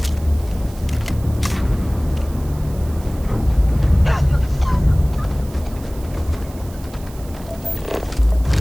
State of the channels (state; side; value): noise; right; hiss, 21 dB below the sound